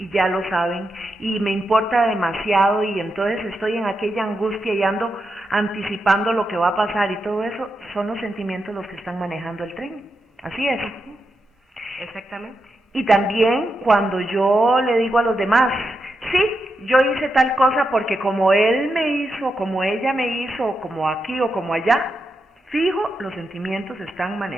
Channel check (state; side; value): normal; both; correlation 0.86